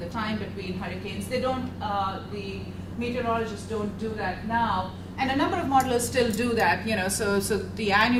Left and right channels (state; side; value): identical; both; correlation 1.00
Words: time between hurricanes. The meteorologists don't do that now. And a number of modelers still do that, so the